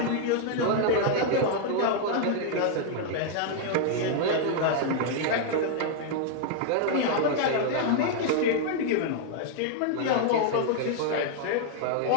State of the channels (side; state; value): both; different; correlation 0.00